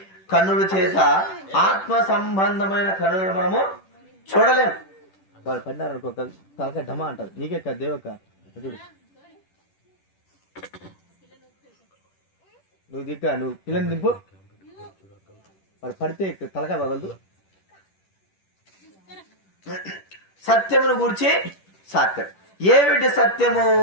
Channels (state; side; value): late; right; 10 ms